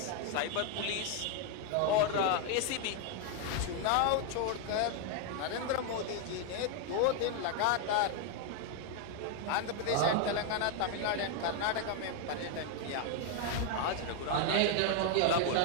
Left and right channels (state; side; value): different; both; correlation 0.00